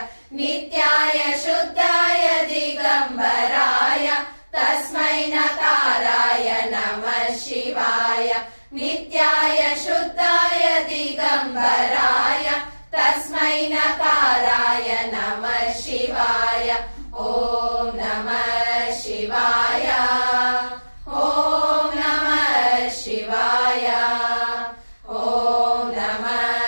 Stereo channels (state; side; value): inverted; both; correlation -1.00